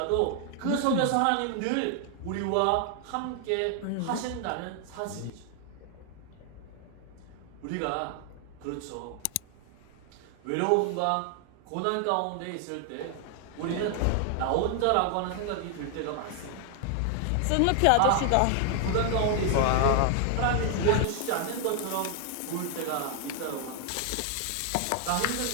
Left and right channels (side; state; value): both; different; correlation 0.00